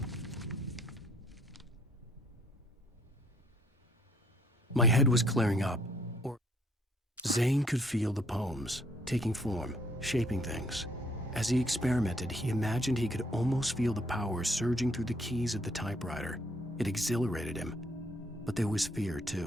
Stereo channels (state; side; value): normal; both; correlation 0.65